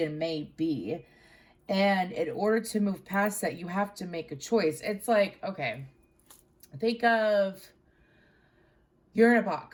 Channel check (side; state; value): both; identical; correlation 1.00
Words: may be. And in order to move past that, you have to make a choice. It's like, okay, think of, you're in a